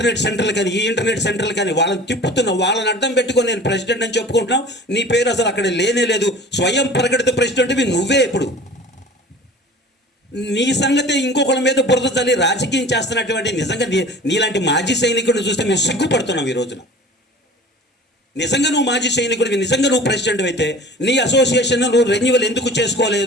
సెంటర్లు కానీ ఈ ఇంటర్నెట్ సెంటర్లు కానీ వాళ్ళని తిప్పుతున్నావు, వాళ్ళని అడ్డం పెట్టుకొని నేను ప్రెసిడెంట్ అని చెప్పుకుంటున్నావు. నీ పేరు అసలు అక్కడ లేనే లేదు. స్వయం ప్రకటిత ప్రెసిడెంట్వి నువ్వే. ఇప్పుడు నీ సంగతి ఇంకొకరి మీద బురద చల్లి రాజకీయం చేస్తున్నటువంటి నిజంగా నీలాంటి మాజీ సైనికుడిని చూస్తే మేము సిగ్గుపడుతున్నాం ఈ రోజున. నిజంగా నువ్వు మాజీ సైనికుడివి, నిజంగా నువ్వు ప్రెసిడెంట్ అయితే నీ అసోసియేషన్ నువ్వు రెన్యువల్ ఎందుకు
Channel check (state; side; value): normal; both; correlation 0.42